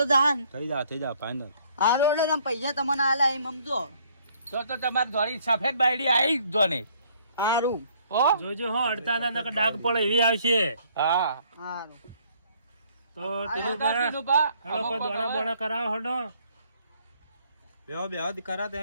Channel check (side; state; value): both; inverted; correlation -0.63